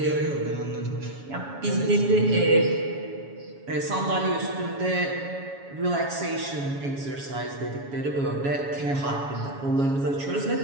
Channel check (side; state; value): left; late; 7.2 ms